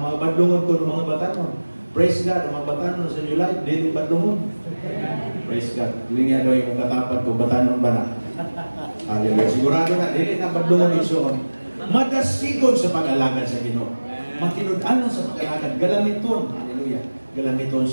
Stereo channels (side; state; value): both; inverted; correlation -1.00